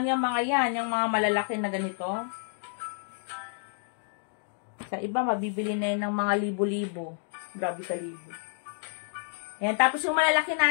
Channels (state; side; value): silent; right; 58 dB below the other